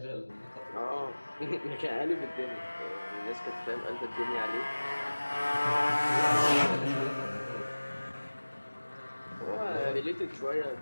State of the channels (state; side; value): inverted; both; correlation -1.00